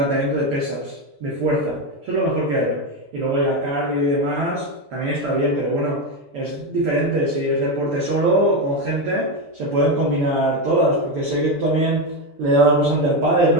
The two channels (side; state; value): left; late; 6.9 ms